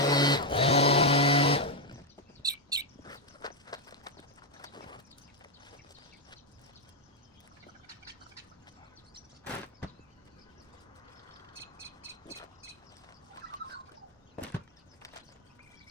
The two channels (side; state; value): both; normal; correlation 0.02